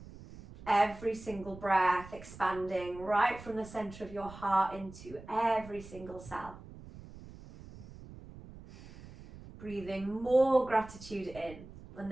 Every single breath expanding right from the center of your heart into every single cell. Breathing more gratitude in and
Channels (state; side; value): noise; right; rumble, 16 dB below the sound